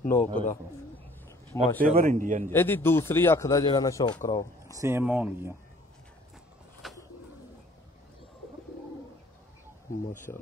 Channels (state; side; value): normal; both; correlation 0.54